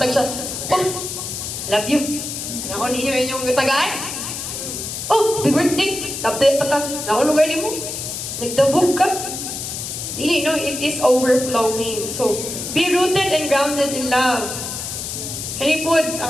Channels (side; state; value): left; noise; hiss, 6 dB below the sound